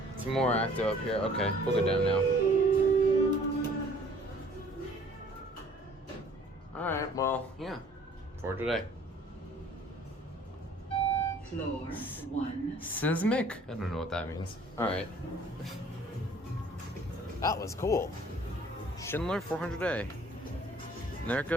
It's more active up here. Okay, we'll go down now. Alright, well, yeah. For today. Floor 1. Seismic? I don't know what that means. Alright. That was cool. Schindler 400A. And there it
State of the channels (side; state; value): both; normal; correlation 0.55